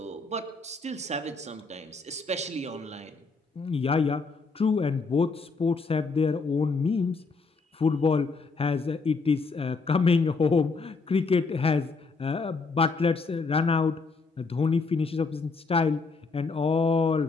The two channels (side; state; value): right; quieter; 4.2 dB